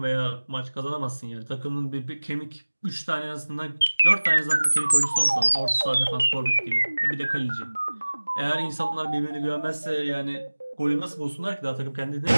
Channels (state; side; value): inverted; both; correlation -1.00